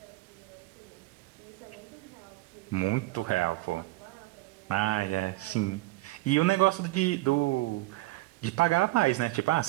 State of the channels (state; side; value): quieter; left; 19.1 dB